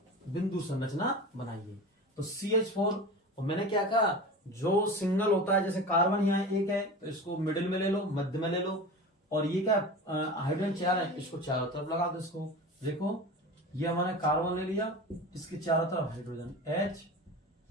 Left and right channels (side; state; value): both; normal; correlation 0.32